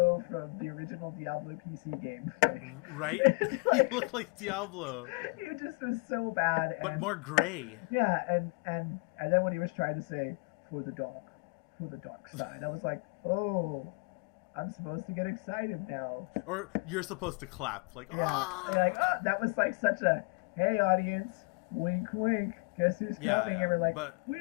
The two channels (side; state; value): right; quieter; 28.8 dB